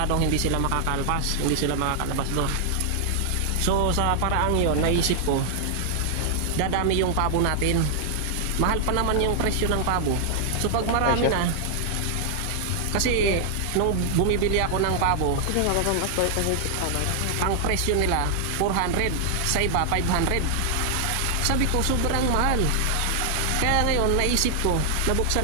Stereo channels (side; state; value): both; different; correlation 0.00